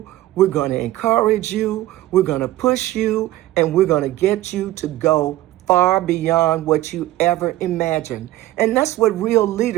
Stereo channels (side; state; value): left; quieter; 15.8 dB